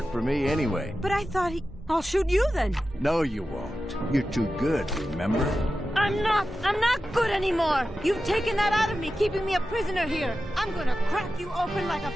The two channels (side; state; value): both; normal; correlation 0.93